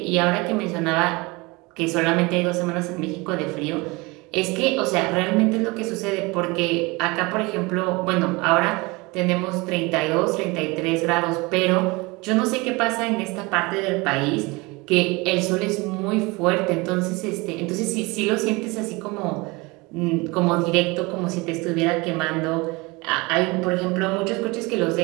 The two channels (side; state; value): left; quieter; 24.8 dB